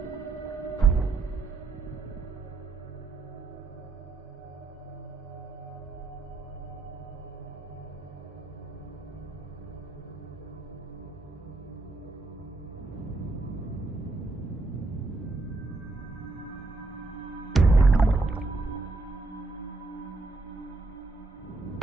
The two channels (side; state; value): left; quieter; 3.4 dB